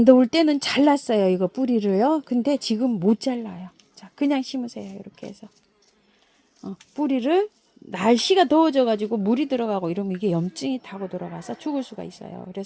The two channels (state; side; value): identical; both; correlation 1.00